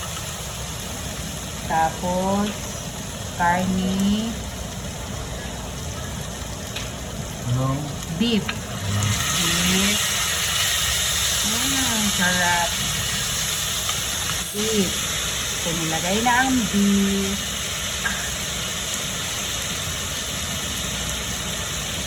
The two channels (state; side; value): identical; both; correlation 1.00